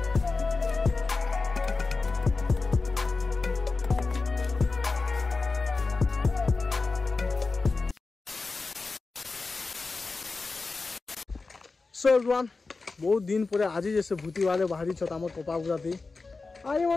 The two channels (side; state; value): right; quieter; 3.9 dB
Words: सो एवरीवन बहुत दिन पर आज जैसे भूति वाले बाहरी छत आम कपा पूरा थी आज